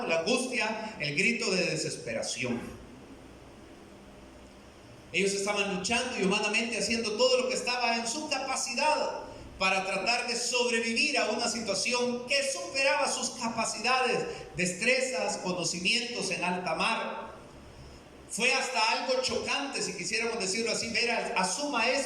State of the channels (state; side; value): identical; both; correlation 1.00